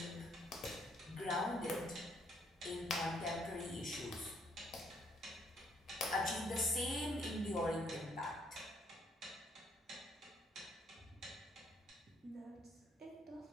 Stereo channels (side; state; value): both; normal; correlation 0.70